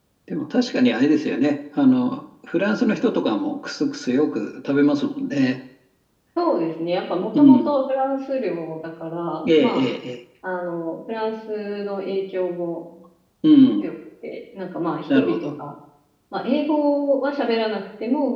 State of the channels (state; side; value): identical; both; correlation 1.00